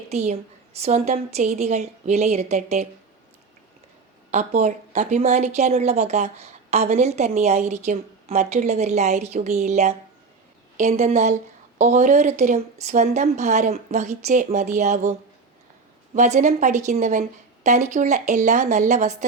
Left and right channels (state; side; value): quieter; left; 4.5 dB